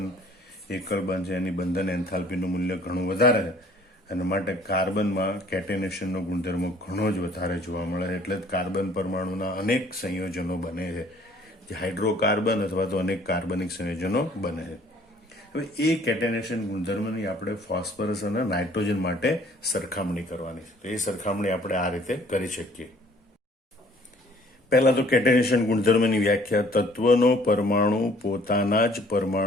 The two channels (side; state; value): both; normal; correlation 0.57